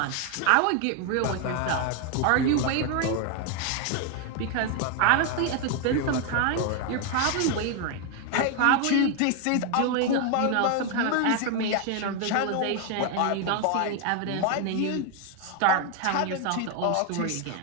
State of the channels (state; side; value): different; both; correlation 0.01